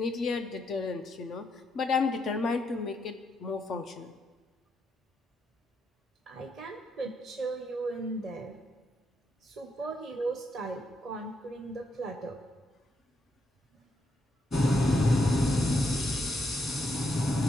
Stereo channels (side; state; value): both; normal; correlation 0.79